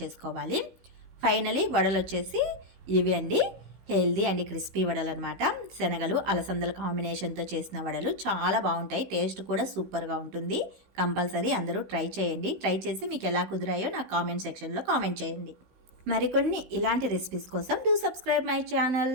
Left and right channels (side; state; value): left; late; 16 ms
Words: చేసుకోవాలి. ఫైనలీ వడలు వచ్చేసి ఇవి అండి, హెల్దీ అండ్ క్రిస్పీ వడలు అనమాట. శనగలు అలసందల కాంబినేషన్తో చేసిన వడలు చాలా బాగుంటాయి. టేస్ట్ కూడా సూపర్గా ఉంటుంది. కంపల్సరీ అందరూ ట్రై చేయండి. ట్రై చేసి మీకు ఎలా కుదిరాయో నాకు కామెంట్ సెక్షన్లో కామెంట్ చేయండి. మరికొన్ని ఇలాంటి రెసిపీస్ కోసం do subscribe my channel.